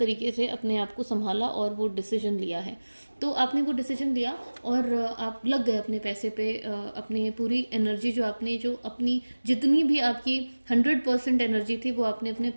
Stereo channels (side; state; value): both; inverted; correlation -1.00